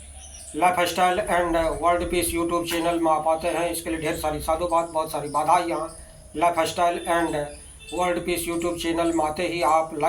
Life style and world peace YouTube channel में आप आते हैं, इसके लिए ढेर सारी साधुवाद, बहुत सारी बधाइयाँ। Life style and world peace YouTube channel में आते ही आप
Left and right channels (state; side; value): identical; both; correlation 1.00